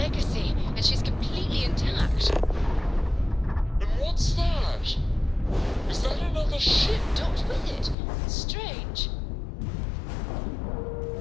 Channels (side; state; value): right; drops out; at 8.0 s